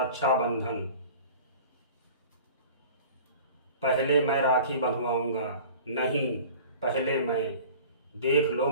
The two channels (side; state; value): both; inverted; correlation -0.43